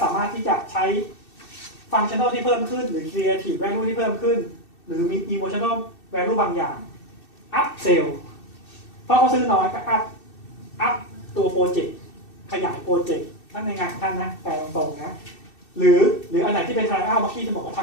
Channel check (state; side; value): late; right; 2.6 ms